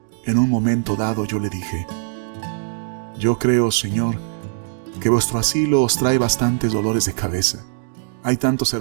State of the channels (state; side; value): silent; left; digital silence